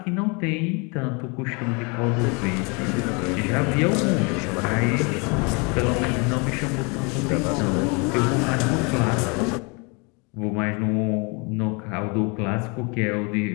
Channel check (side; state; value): right; quieter; 31.2 dB